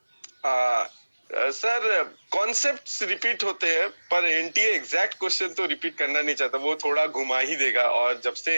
सर कॉन्सेप्ट्स रिपीट होते हैं, पर एनटीए एग्जैक्ट क्वेश्चन तो रिपीट करना नहीं चाहता, वो थोड़ा घुमा ही देगा। और जब से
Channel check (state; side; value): inverted; both; correlation -1.00